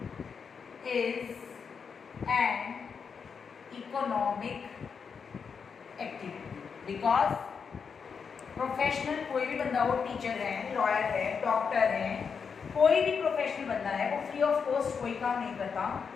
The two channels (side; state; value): right; quieter; 6.1 dB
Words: is an economic activity because professional कोई भी बंदा हो, teacher है, lawyer है, doctor है, कोई भी professional बंदा है, वो फ्री ऑफ कॉस्ट कोई काम नहीं करता।